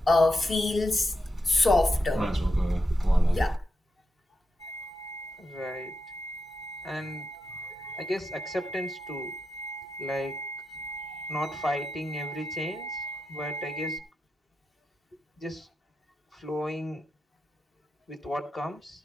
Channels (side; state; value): both; normal; correlation 0.86